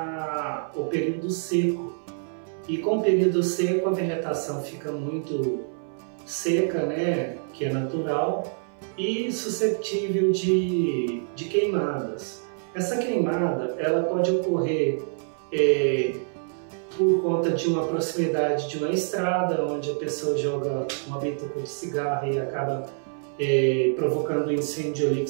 o período seco. E com o período seco, a vegetação fica muito seca, né, que é natural, e suscetível de queimadas. Essa queimada ela pode ocorrer por conta de uma proximidade de uma estrada, onde a pessoa joga uma bituca de cigarro e acaba provocando um incêndio ali que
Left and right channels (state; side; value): silent; left; 59 dB below the other